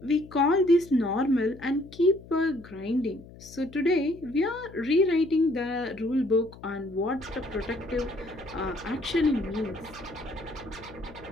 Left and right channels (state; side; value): noise; left; hum, 19 dB below the sound